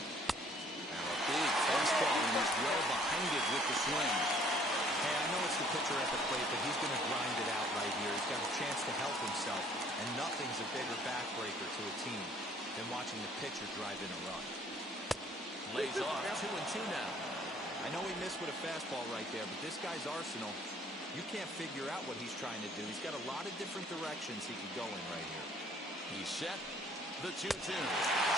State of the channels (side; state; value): both; normal; correlation 0.59